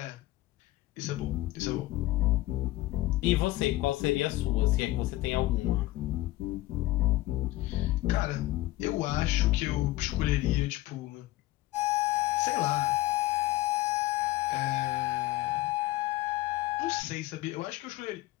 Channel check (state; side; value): quieter; right; 17.2 dB